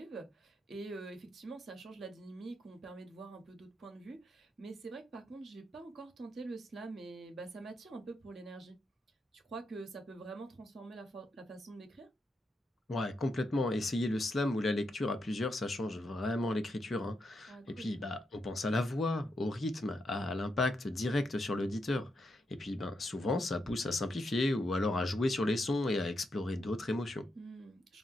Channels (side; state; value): both; normal; correlation 0.83